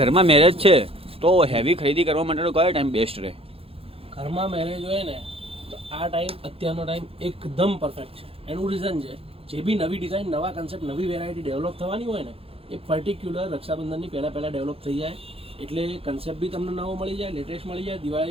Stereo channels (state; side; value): late; left; 0.27 ms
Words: મેરેજ છે તો હેવી ખરીદી કરવા માટેનો કયો ટાઈમ બેસ્ટ રહે? ઘરમાં મેરેજ હોય ને તો આ ટાઈમ અત્યારનો ટાઈમ એકદમ પરફેક્ટ છે. એનું રીઝન છે જે બી નવી ડિઝાઇન, નવા કન્સેપ્ટ, નવી વેરાયટી ડેવલપ થવાની હોય ને એ પર્ટિક્યુલર રક્ષાબંધનની પહેલાં ડેવલપ થઈ જાય એટલે કન્સેપ્ટ બી તમને નવો મળી જાય, લેટેસ્ટ મળી જાય,